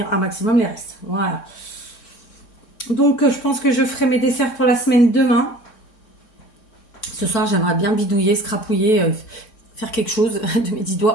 un maximum les restes. Voilà. Donc, je pense que je ferai mes desserts pour la semaine demain. Ce soir, j'aimerais bien bidouiller, scrapouiller, faire quelque chose de mes 10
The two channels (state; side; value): late; right; 3.6 ms